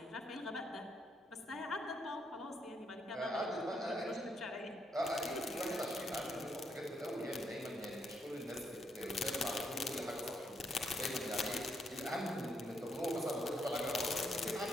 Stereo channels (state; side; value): normal; both; correlation 0.75